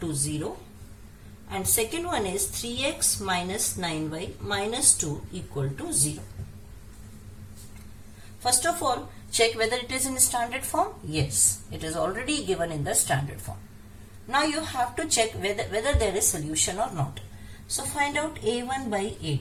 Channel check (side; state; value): both; identical; correlation 1.00